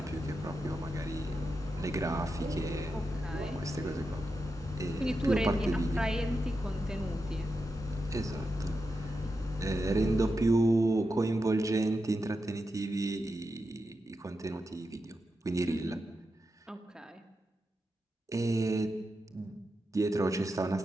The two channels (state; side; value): normal; both; correlation 0.88